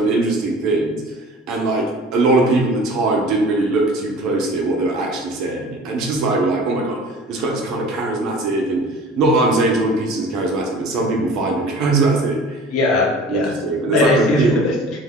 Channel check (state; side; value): normal; both; correlation 0.43